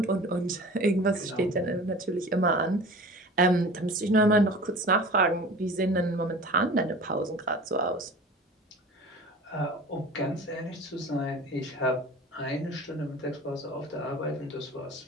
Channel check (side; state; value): both; normal; correlation 0.39